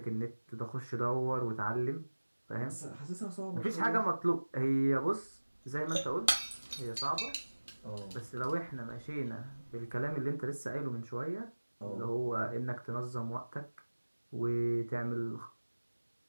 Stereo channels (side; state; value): both; inverted; correlation -1.00